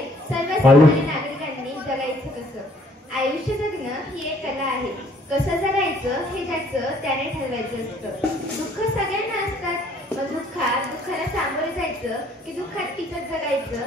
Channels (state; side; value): normal; both; correlation 0.61